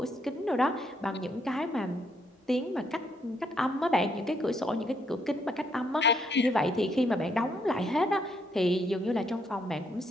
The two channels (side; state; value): both; normal; correlation 0.73